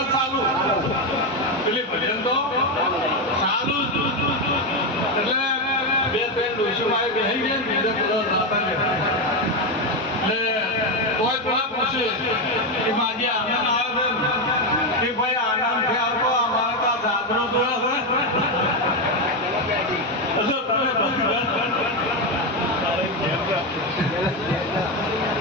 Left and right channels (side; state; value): both; normal; correlation 0.09